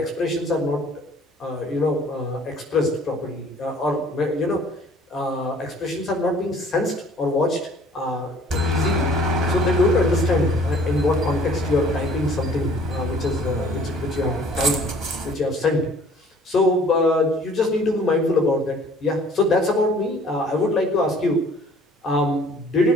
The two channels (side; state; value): both; normal; correlation 0.54